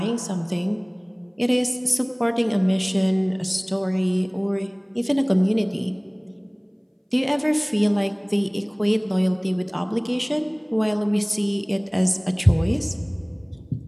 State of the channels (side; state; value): both; identical; correlation 1.00